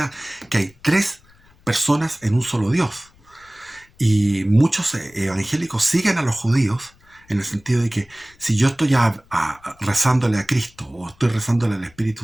que hay tres personas en un solo Dios. Y muchos evangélicos siguen a los judíos en el sentido de que si yo estoy rezándole a Cristo o estoy rezándole al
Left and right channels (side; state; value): left; noise; rumble, 30 dB below the sound